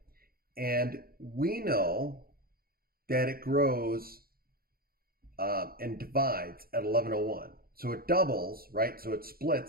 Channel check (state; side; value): late; left; 0.43 ms